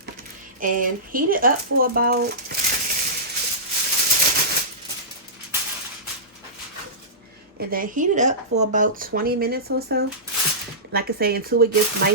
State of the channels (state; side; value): normal; both; correlation -0.18